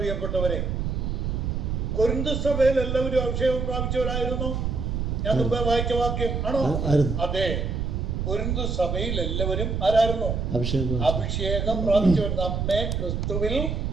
കൊരിന്ത് സഭയിൽ എല്ലാവരും അഭിഷേകം പ്രാപിച്ചവരായിരുന്നു. ഞാൻ മുമ്പേ വായിച്ച വാക്യം ആണോ? അതെ, കൊരിന്ത് സഭയിൽ എല്ലാവരും ആരായിരുന്നു? അഭിഷേകം പ്രാപിച്ചവർ.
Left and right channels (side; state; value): right; noise; rumble, 1 dB below the sound